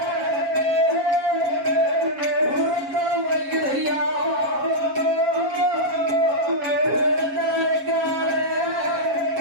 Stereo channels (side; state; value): left; late; 7.3 ms